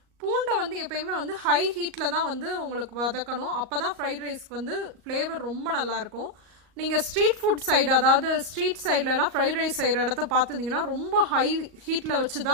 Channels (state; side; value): late; left; 38 ms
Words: பூண்டை எப்பயுமே ஹை ஹீட்டில் தான் உங்களுக்கு வதக்கணும். அப்போ தான் ஃப்ரைட் ரைஸ்க்கு ஃப்ளேவர் ரொம்ப நல்லாயிருக்கும். நீங்கள் ஸ்ட்ரீட் ஃபுட் சைடு, அதாவது ஸ்ட்ரீட் சைட்லலாம் ஃப்ரைட் ரைஸ் செய்கிற இடத்த பார்த்துருந்தீங்கன்னா ரொம்ப ஹை ஹீட்டில் வச்சு